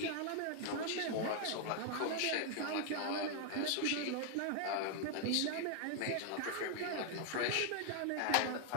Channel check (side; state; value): both; different; correlation 0.00